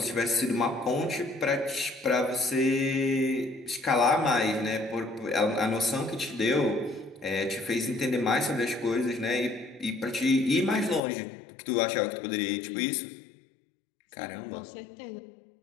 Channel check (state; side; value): drops out; right; at 11.0 s